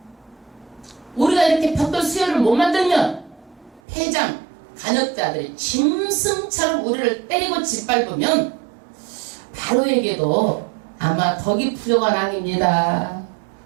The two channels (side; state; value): left; drops out; at 3.8 s